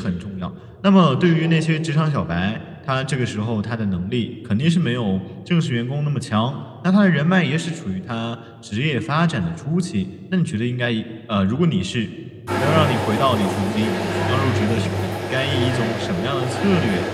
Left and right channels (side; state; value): both; identical; correlation 1.00